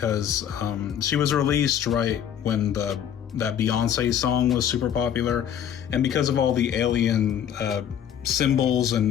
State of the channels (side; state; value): right; quieter; 9.3 dB